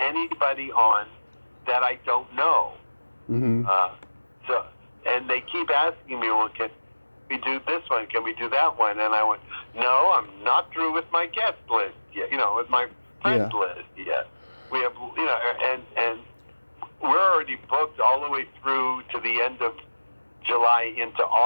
on that I don't know. Mm-hmm. And they keep asking me, well, can we do this one? Can we do that one? And I went, no, I'm not through with my guest list yet. You know, with my friends list yet. We have, you know, and we're already booked all the way through to the end of July into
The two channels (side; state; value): both; inverted; correlation -1.00